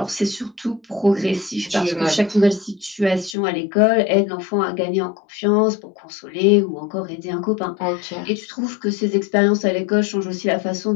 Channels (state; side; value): drops out; right; at 3.4 s